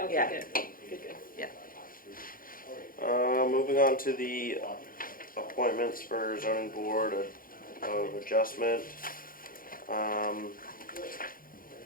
yeah. good. Good. Yeah. Moving on to the appointments for zoning board of adjustment.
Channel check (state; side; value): late; right; 0.41 ms